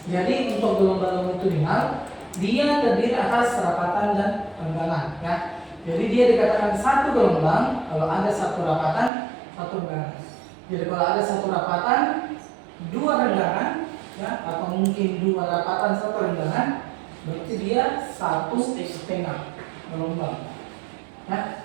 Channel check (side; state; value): left; drops out; at 9.1 s